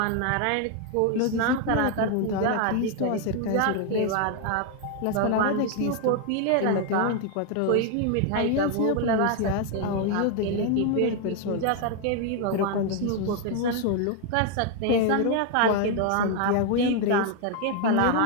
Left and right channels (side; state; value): both; different; correlation 0.01